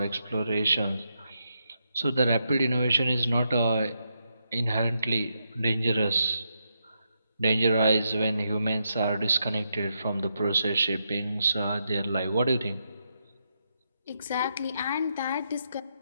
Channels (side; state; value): both; inverted; correlation -0.82